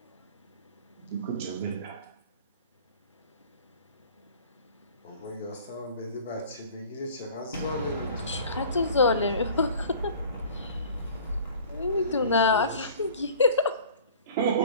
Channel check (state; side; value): inverted; both; correlation -0.46